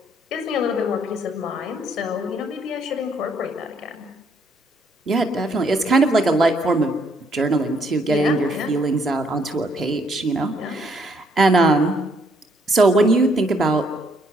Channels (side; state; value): both; normal; correlation 0.69